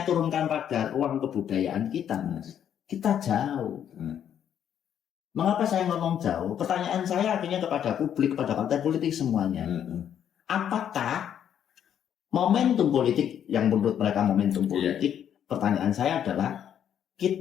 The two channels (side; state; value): right; quieter; 9.4 dB